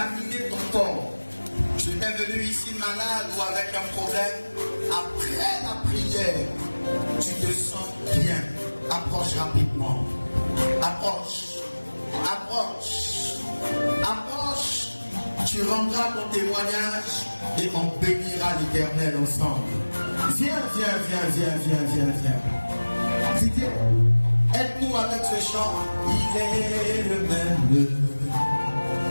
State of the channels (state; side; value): inverted; both; correlation -1.00